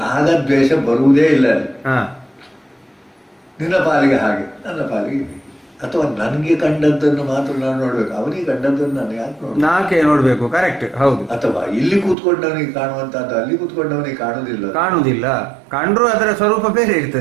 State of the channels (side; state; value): left; drops out; at 12.2 s